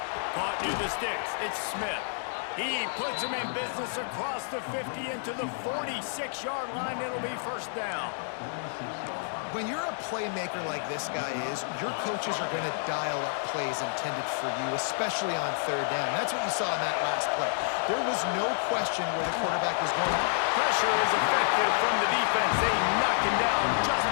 Caught near the sticks. It's Smith. He puts him in business across the 50 into the 46-yard line. It'll be first down. When you're a playmaker like this guy is, your coaches are going to dial up plays intended for you, especially on third down. That's what you saw in that last play. There was no question where the quarterback was going. Pressure is effective from the defense. They knock him down just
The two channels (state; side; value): silent; right; digital silence